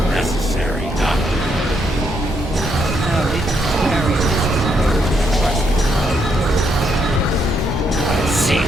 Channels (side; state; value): both; normal; correlation 0.76